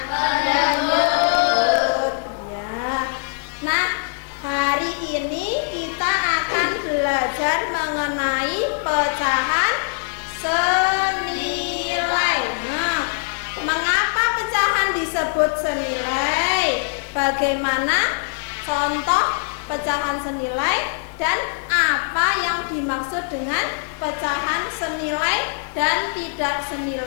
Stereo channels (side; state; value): right; silent; 63 dB below the other